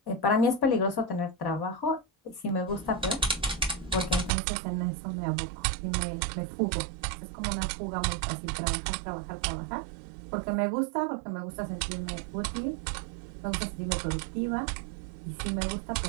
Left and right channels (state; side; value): drops out; left; at 4.3 s